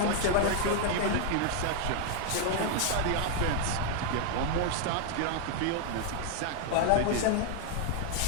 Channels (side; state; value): both; different; correlation 0.00